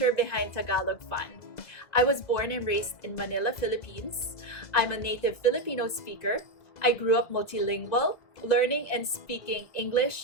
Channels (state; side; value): late; right; 2.2 ms